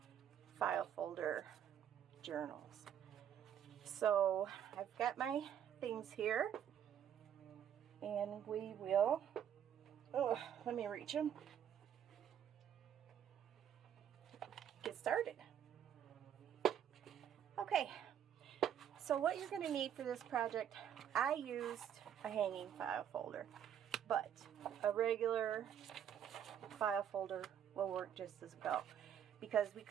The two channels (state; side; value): quieter; left; 9.4 dB